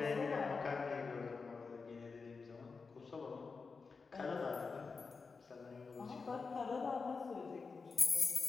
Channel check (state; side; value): quieter; right; 4.7 dB